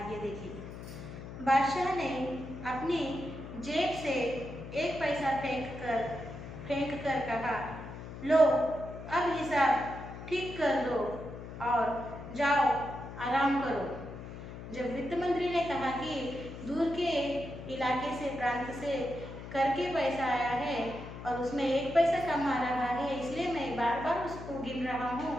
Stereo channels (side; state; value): left; noise; hum, 11 dB below the sound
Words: देखिए, बादशाह ने अपनी जेब से 1 पैसा फेंक कर कहा, लो अब हिसाब ठीक कर दो और जाओ आराम करो। जब वित्त मंत्री ने कहा कि दूर के इलाके से, प्रांत से कर के पैसा आया है और उसमें 1 पैसा कम आ रहा है, इसलिए मैं बार बार उसको गिन रहा हूँ